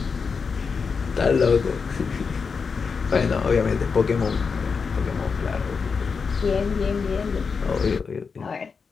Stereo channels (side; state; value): right; quieter; 5.4 dB